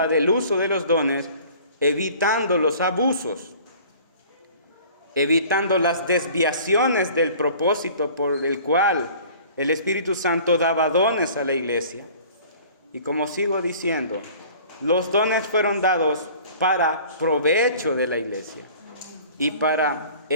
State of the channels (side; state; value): both; inverted; correlation -0.47